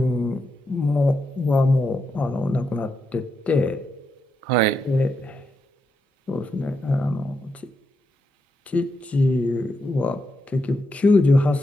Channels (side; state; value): both; normal; correlation 0.83